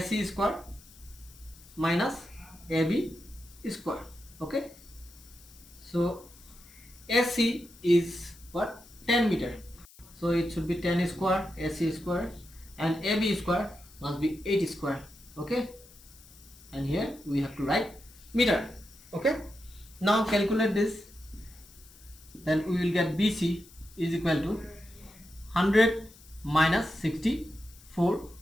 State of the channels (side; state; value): left; noise; hiss, 23 dB below the sound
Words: square minus AB square. Okay, so AC is what, 10 meter, so it should be 10 square AC square, and AB square must be 8 square. Okay, and here we have to write meter. Okay, now calculate this, then we will get BC is equal to 100 minus 64